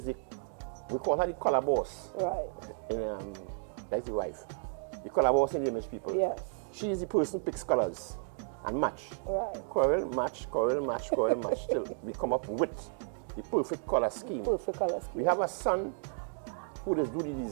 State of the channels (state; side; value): silent; left; digital silence